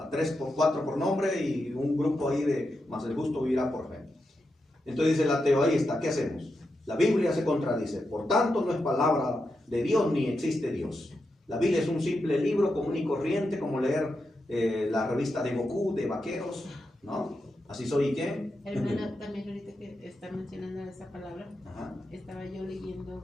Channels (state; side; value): normal; both; correlation 0.87